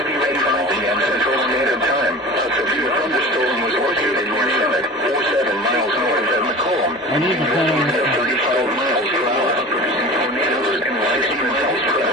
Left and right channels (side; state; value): both; normal; correlation 0.37